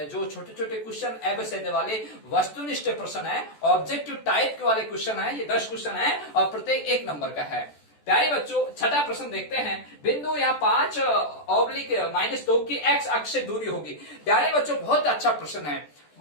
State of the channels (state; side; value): late; right; 14 ms